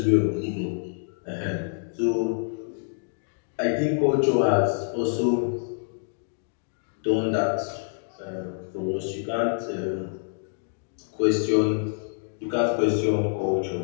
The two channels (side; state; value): right; silent; digital silence